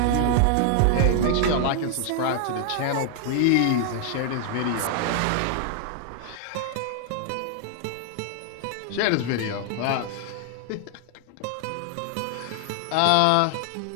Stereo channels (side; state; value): both; different; correlation 0.00